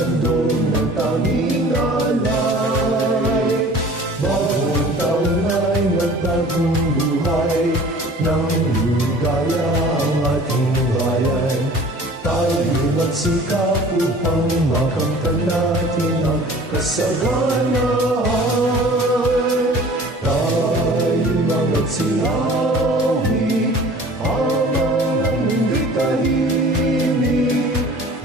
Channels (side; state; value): both; normal; correlation 0.46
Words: ng tanging alay. Bawat taon ay nagbagong buhay, nang ligaya ang ating bayan. Tayo magsikap upang makamtan natin ang kasaganahan. Tayo magsiyawi habang ang mundo'y tahimik,